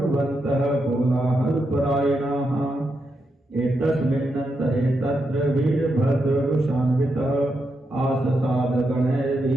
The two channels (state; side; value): normal; both; correlation 0.84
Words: कोलाहलपरायणाः। एतस्मिन्नन्तरे तत्र वीरभद्ररुषान्वितः